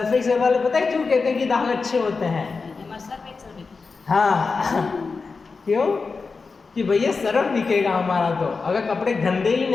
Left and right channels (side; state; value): right; quieter; 4.5 dB